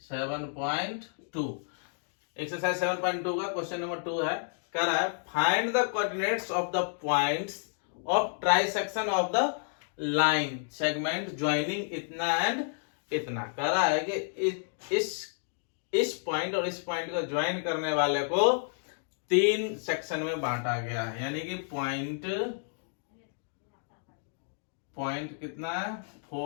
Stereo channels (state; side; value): silent; right; 57 dB below the other